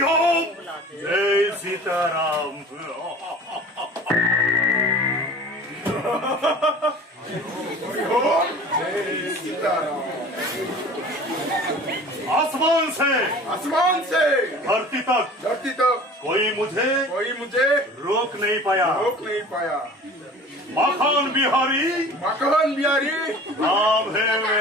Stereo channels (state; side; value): normal; both; correlation 0.42